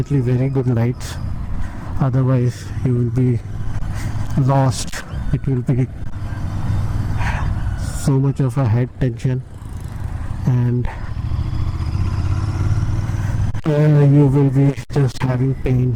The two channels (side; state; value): both; identical; correlation 1.00